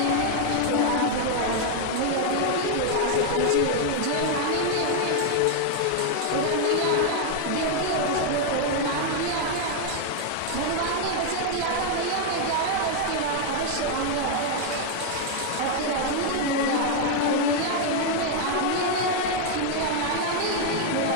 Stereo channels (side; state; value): both; different; correlation 0.00